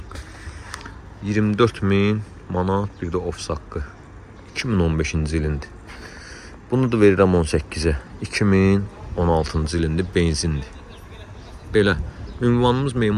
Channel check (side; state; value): both; identical; correlation 1.00